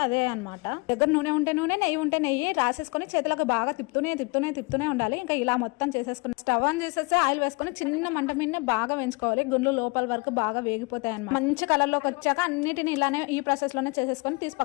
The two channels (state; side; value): quieter; right; 28.1 dB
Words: అదే అనమాట. దగ్గర నూనె ఉంటే నూనె, నెయ్యి ఉంటే నెయ్యి రాసేసుకొని చేతులకు బాగా తిప్పుతూనే ఉండాలి. ఇంకా ఇలా మొత్తం చేసేసుకుని స్టవ్ ఆన్ చేసేసి ఆయిల్ వేసుకొని చిన్న మంట మీద బాగా వేయించుకోవాలి. గుండ్లు లోపల వరకు బాగా వేగిపోతాయి అన్నమాట. మంచి కలర్ లోకి వచ్చాక అన్నిటిని ఇలానే ఈ ప్రాసెస్ లోనే చేసేసుకొని తీసి